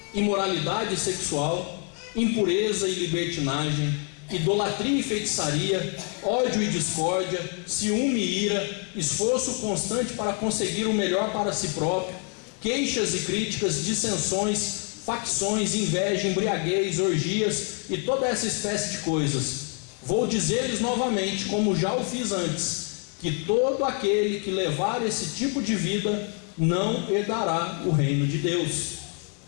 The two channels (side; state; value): right; quieter; 37.6 dB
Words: imoralidade sexual, impureza e libertinagem, idolatria e feitiçaria, ódio e discórdia, ciúme e ira, esforço constante para conseguir o melhor para si próprio, queixas e críticas, dissensões, facções, inveja, embriaguez, orgias e toda essa espécie de coisas. Vou dizer-lhes novamente, como já o fiz antes, que todo aquele que levar esse tipo de vida não herdará o reino de Deus.